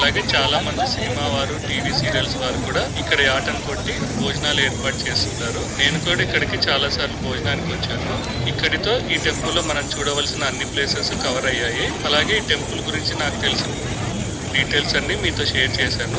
చాలా మంది సినిమా వారు, టీవీ సీరియల్స్ వారు కూడా ఇక్కడ ఆటను కొట్టి భోజనాలు ఏర్పాటు చేస్తుంటారు. నేను కూడా ఇక్కడికి చాలా సార్లు భోజనానికి వచ్చాను. ఇక్కడితో ఈ టెంపుల్ లో మనం చూడవలసిన అన్ని ప్లేసెస్ కవర్ అయ్యాయి. అలాగే ఈ టెంపుల్ గురించి నాకు తెలిసిన డీటెయిల్స్ అన్ని మీతో షేర్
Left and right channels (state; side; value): identical; both; correlation 1.00